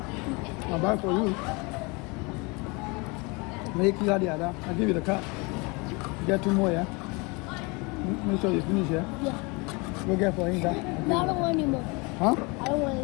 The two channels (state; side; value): quieter; right; 28.2 dB